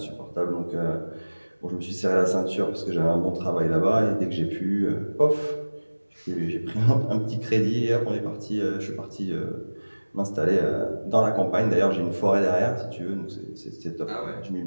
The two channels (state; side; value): inverted; both; correlation -1.00